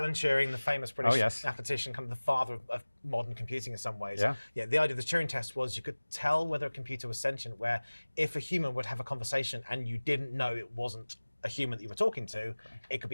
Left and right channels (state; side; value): inverted; both; correlation -1.00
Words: Turing, the famous British mathematician, kind of the father of modern computing in some ways. Yeah. The idea of the Turing Test was you could tell whether a computer was sentient, where if a human would have a conversation and you didn't know it wasn't a human that you were talking to, it could